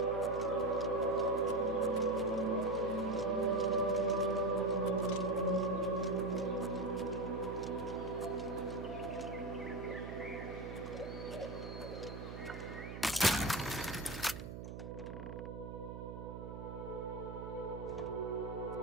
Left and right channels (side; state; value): right; noise; hum, 8 dB below the sound